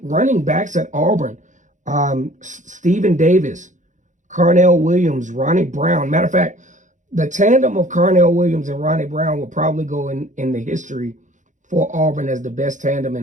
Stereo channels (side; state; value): left; late; 0.36 ms